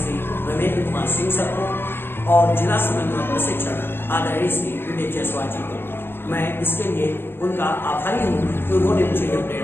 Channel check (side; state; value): right; late; 0.10 ms